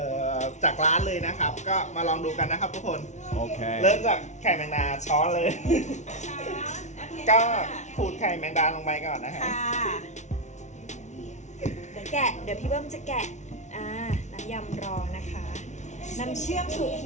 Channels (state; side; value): late; right; 0.34 ms